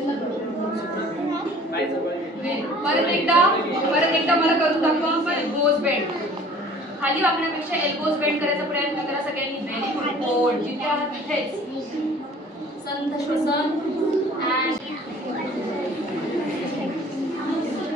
परत एकदा मला करून दाखवा. Elbows bend. खाली वाकण्यापेक्षा एल्बोज बेंड करायचा प्रयत्न करा सगळ्यांनी. Very good. होल्ड. जिथे आहात तिथेच. संथ श्वसन.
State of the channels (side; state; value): both; normal; correlation 0.49